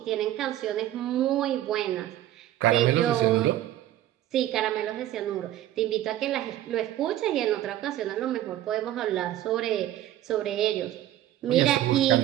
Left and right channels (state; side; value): quieter; left; 13.2 dB